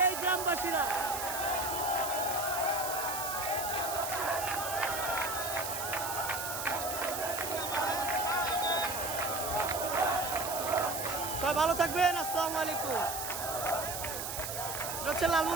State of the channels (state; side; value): noise; right; hiss, 5 dB below the sound